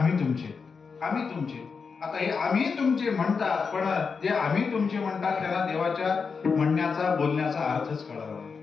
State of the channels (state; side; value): quieter; right; 5.3 dB